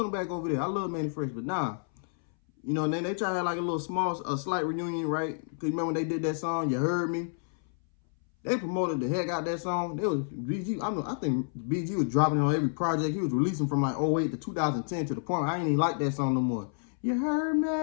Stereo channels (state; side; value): silent; right; 58 dB below the other